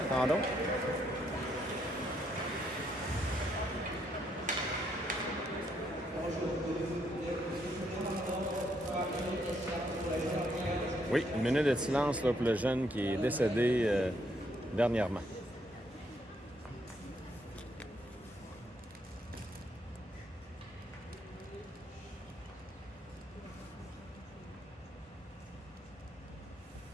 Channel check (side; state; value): both; normal; correlation 0.73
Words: Attendons. Oui, une minute de silence là, pour le jeune qui est décédé dernièrement.